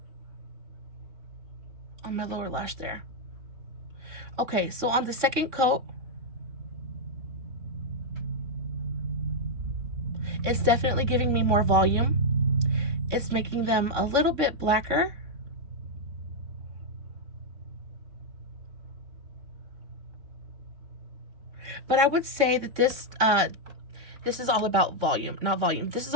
on my lower lash there. Okay, so on the second coat, it's definitely giving me more volume. It's making them a little bit blacker. But I would say that this is all about volume, not volume. This is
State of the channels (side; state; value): left; late; 3.6 ms